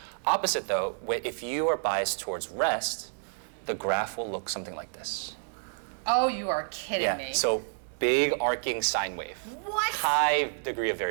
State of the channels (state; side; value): silent; left; digital silence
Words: opposite though, if you are biased towards rest, the graph will look something like this. Oh, you are kidding me. So big arcing sine wave. What? High degree of